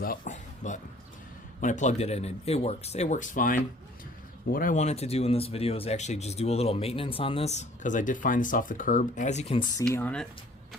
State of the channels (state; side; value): normal; both; correlation 0.54